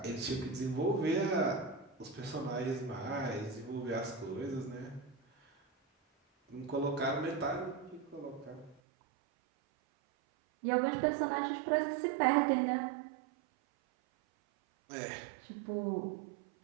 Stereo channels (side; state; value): left; drops out; at 8.8 s